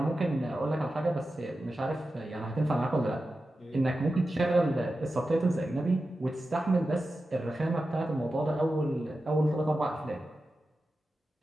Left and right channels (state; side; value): normal; both; correlation 0.92